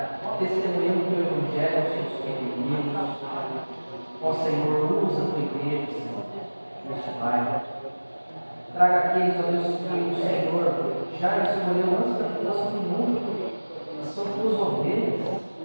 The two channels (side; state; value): both; inverted; correlation -1.00